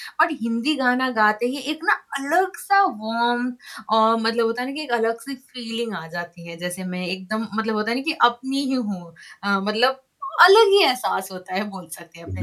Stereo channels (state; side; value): identical; both; correlation 1.00